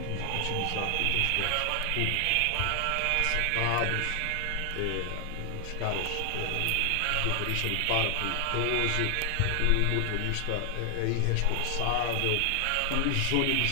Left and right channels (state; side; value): different; both; correlation 0.00